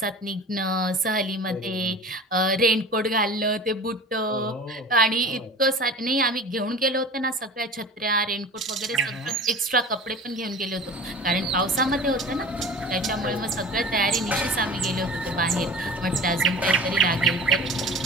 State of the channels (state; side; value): normal; both; correlation 0.37